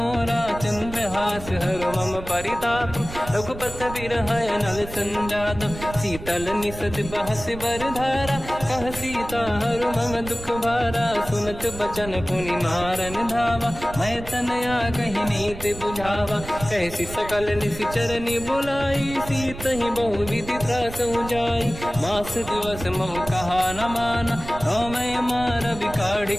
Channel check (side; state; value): right; noise; rumble, 12 dB below the sound